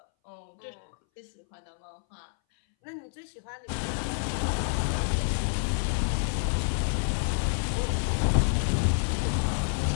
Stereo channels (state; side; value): silent; right; 59 dB below the other